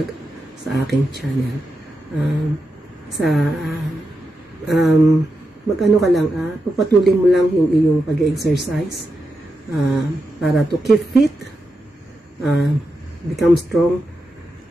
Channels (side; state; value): both; normal; correlation 0.87